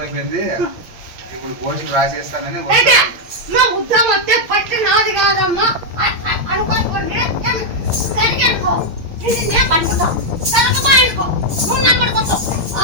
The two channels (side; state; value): left; late; 8.7 ms